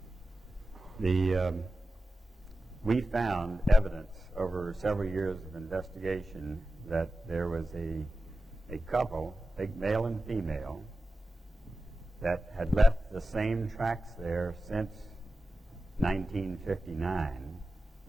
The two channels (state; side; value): normal; both; correlation 0.93